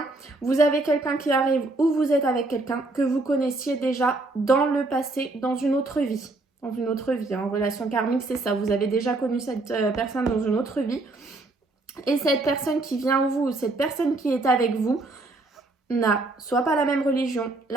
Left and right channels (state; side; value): quieter; left; 3.1 dB